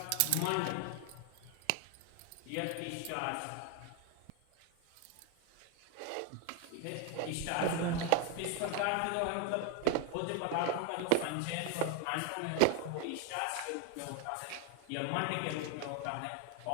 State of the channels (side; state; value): both; different; correlation 0.01